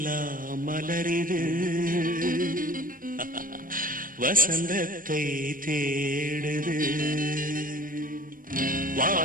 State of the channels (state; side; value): late; left; 0.40 ms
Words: மலரிது வசந்தத்தை தேடுது.